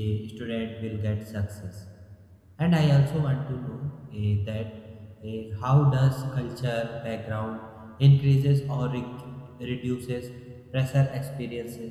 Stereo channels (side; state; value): both; identical; correlation 1.00